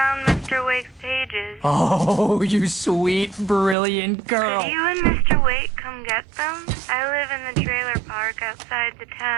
Mr. Wake's pages. Oh, you sweet, brilliant girl. Could you and Mr. Wake come get them? I live in the trailer park outside the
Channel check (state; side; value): drops out; left; at 3.8 s